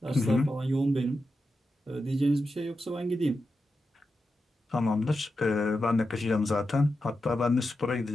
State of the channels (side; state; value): both; normal; correlation 0.89